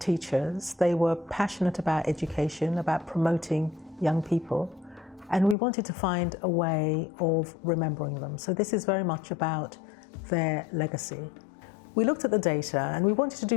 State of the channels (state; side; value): drops out; right; at 5.6 s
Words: They were passionate about education, about promoting young people, and we wanted to find a way of remembering them. So this is very much about their legacy. We looked at the data and we wanted to